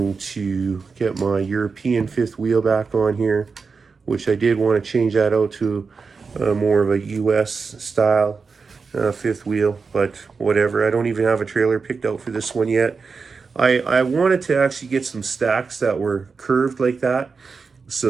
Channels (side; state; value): left; quieter; 4.9 dB